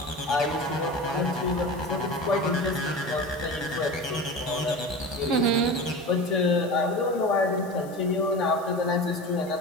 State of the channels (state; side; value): noise; left; hiss, 23 dB below the sound